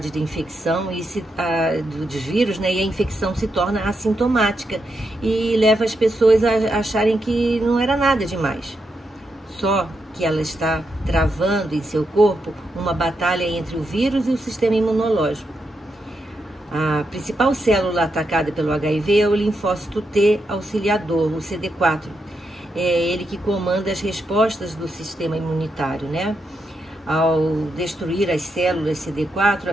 de infecção dos vírus, né? E a infecção se torna assintomática e leva as pessoas a acharem que não era nada demais. Só que ela está travando em seu corpo uma batalha entre o vírus e o sistema imunológico. A principal célula atacada pelo HIV é o linfócito T auxiliador, o CD4. É ele que comanda as respostas do sistema imunitário, né? Ao destruir as células CD4, a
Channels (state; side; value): normal; both; correlation 0.83